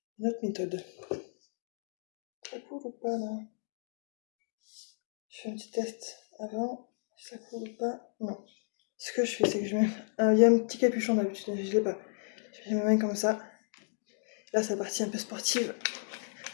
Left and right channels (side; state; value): right; silent; digital silence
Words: notre méthode. Ça coule ou pas là? Je fais un petit test avant. Si ça coule ou pas? Non. Ce que je fais, c'est que je mets. Il y a un petit capuchon d'habitude, je l'ai pas. Je mets mes mains comme ça. Là, c'est la partie un peu sportive.